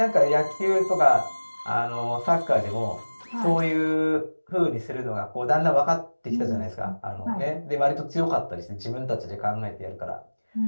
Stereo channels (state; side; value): inverted; both; correlation -1.00